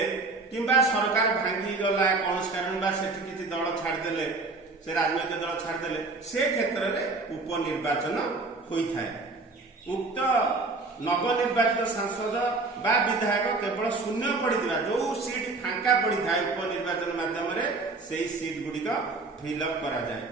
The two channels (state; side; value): quieter; left; 3.6 dB